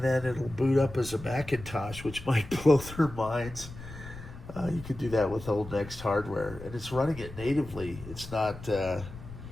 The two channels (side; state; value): left; noise; rumble, 14 dB below the sound